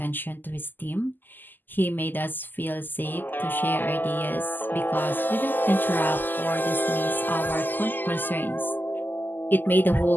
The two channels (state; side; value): late; right; 0.089 ms